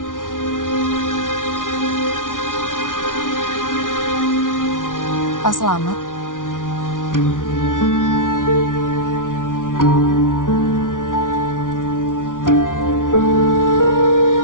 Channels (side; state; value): right; late; 0.88 ms